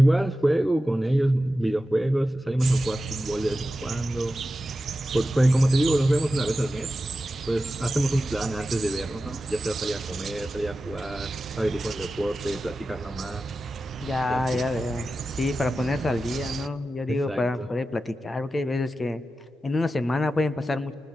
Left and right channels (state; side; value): normal; both; correlation 0.93